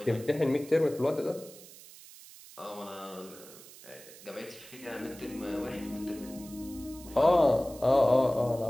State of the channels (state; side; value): noise; right; hiss, 19 dB below the sound